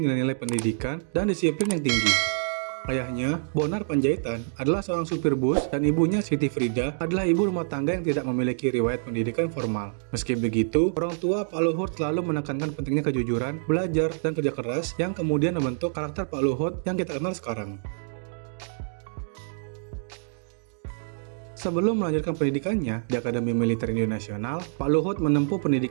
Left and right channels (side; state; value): left; silent; digital silence